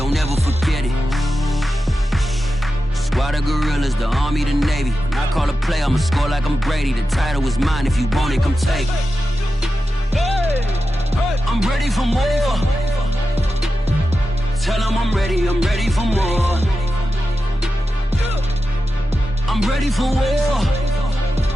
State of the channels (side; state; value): both; normal; correlation 0.91